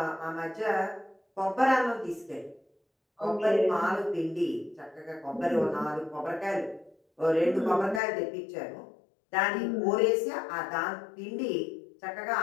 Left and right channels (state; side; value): drops out; right; at 8.0 s